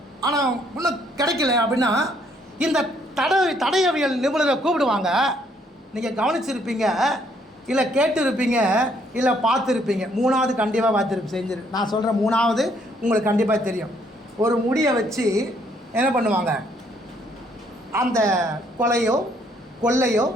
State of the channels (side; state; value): both; normal; correlation 0.68